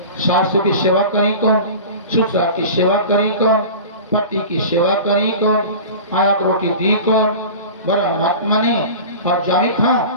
सासू की सेवा करी कौन, ससुर की सेवा करी कौन, पति की सेवा करी कौन, आया को रोटी दी कौन, बड़ा महात्मा ने और जाई खा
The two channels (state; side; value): inverted; both; correlation -0.35